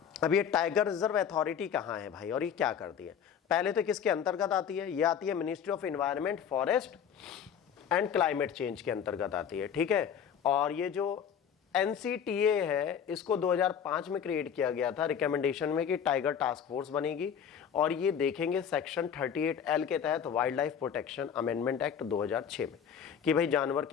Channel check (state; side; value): quieter; right; 8.1 dB